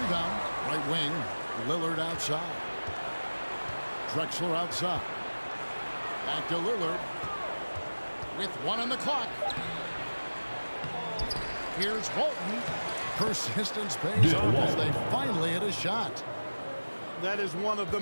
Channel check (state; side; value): inverted; both; correlation -1.00